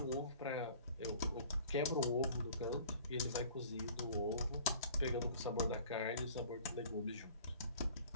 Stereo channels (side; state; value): both; inverted; correlation -0.48